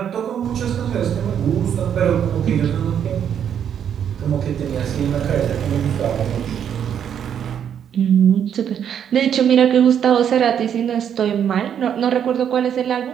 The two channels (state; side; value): quieter; left; 8.7 dB